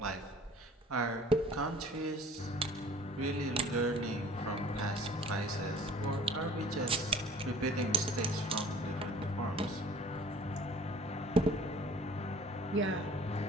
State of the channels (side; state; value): both; normal; correlation 0.49